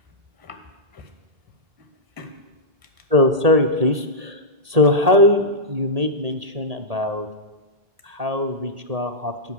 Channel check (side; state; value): left; late; 1.8 ms